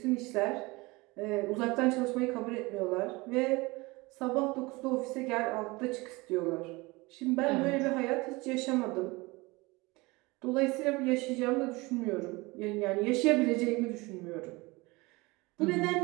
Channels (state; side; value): quieter; left; 23.5 dB